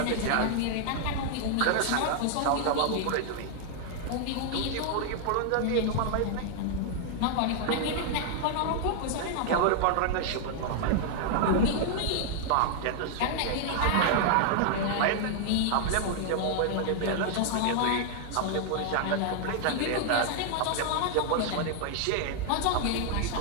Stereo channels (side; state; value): both; different; correlation 0.00